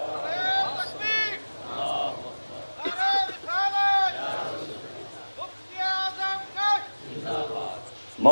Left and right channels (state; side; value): inverted; both; correlation -1.00